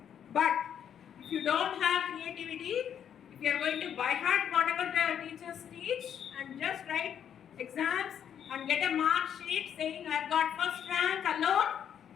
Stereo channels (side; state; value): right; quieter; 8.9 dB